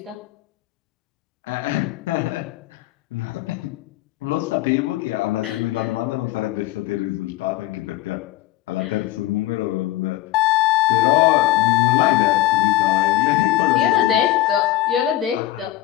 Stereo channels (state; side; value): quieter; right; 15.4 dB